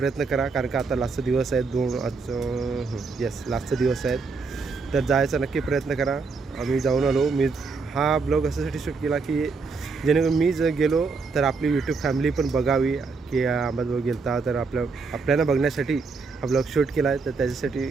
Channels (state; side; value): quieter; left; 4.5 dB